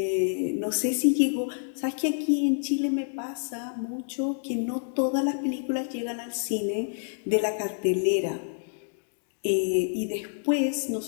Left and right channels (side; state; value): right; silent; digital silence